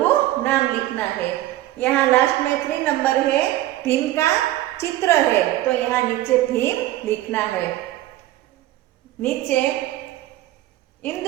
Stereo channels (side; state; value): left; quieter; 15.2 dB